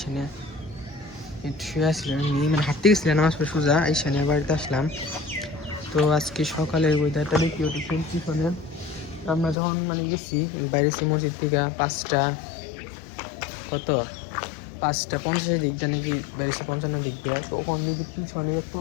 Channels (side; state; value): right; drops out; at 9.6 s